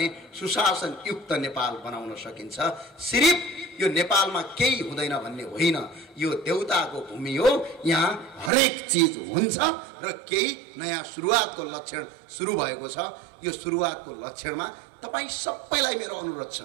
सुशासन युक्त नेपाल बनाउन सकिन्छ। सिर्फ यो नेपालमा केही हुँदैन भन्ने होइन, यो देउताको भूमि हो, यहाँ हरेक चिज हुन्छ र केही नयाँ सुरुवातको लक्षण सुरु भएको छ। यो सुरुवातको लक्षणमा तपाईँ सबैलाई मेरो अनुरोध छ,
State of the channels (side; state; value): left; drops out; at 8.5 s